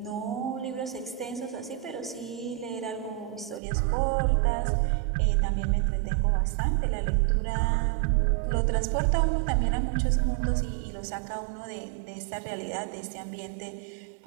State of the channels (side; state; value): left; drops out; at 3.6 s